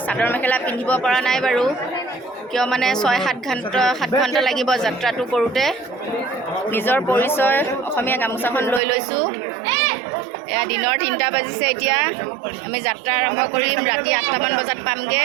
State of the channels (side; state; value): left; drops out; at 8.8 s